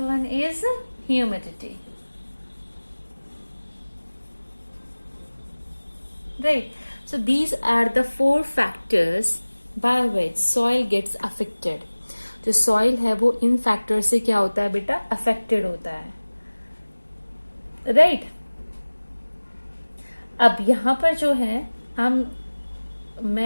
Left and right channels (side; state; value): both; inverted; correlation -1.00